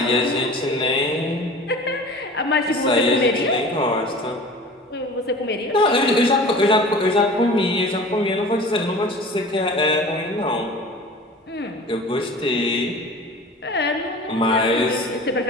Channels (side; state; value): both; normal; correlation 0.40